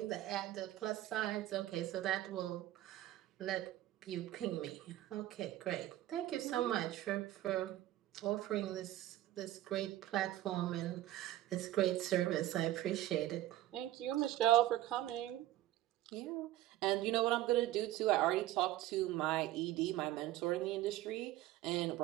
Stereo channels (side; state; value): left; quieter; 14.7 dB